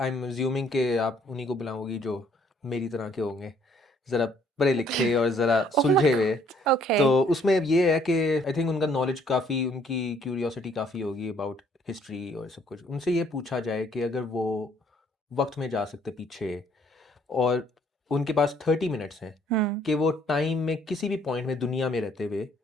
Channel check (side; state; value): both; normal; correlation 0.63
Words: एम अज्यूमिंग कि आप उन्हीं को बुलाओगी जो मेरी तरह के होंगे, ज़रा पढ़े लिखे और ज़रा ओह माय सुलझे हुए। गॉड ओके तो उसमें ये है कि आई थिंक उनका नॉलेज काफ़ी, उनकी क्यूरियोसिटी काफ़ी होगी अबाउट हिस्ट्री और सब कुछ। उनसे ये पूछा जाए कि अगर वो वक्त में जा सकते पीछे और उनके पास 30 मिनट्स हैं कि वो टाइम में किसी भी पॉइंट में दुनिया में रहते हुए